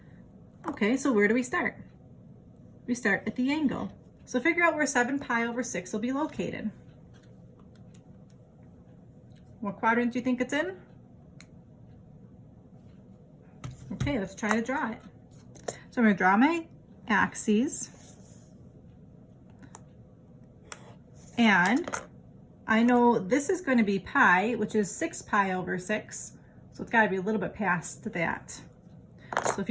Okay, so where do we start? We start at the angle. So figure out where 7 pi over 6 will be located. What quadrant do you think it's in? Okay, let's try to draw it. So I'm going to draw my axes. And I know this is going to be pi, which is 6 pi over 6. So it's got to be a little bit past that. So if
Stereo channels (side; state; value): both; identical; correlation 1.00